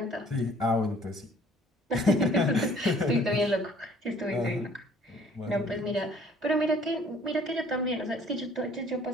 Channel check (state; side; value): normal; both; correlation 0.56